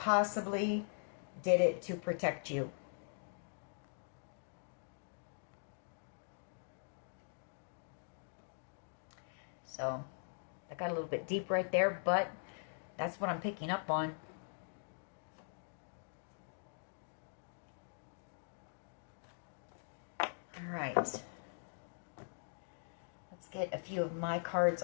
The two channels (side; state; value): right; silent; digital silence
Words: did it to protect you. So, I got a little bit deep right there, but that's what I'm picking up on. All right. Let's get a few of my cards